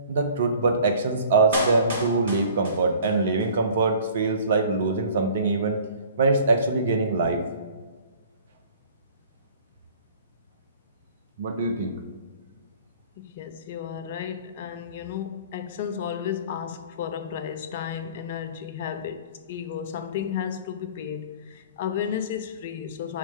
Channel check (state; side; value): inverted; both; correlation -0.49